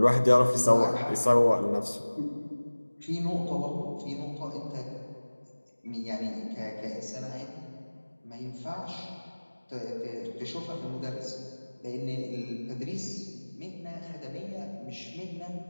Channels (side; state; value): both; inverted; correlation -1.00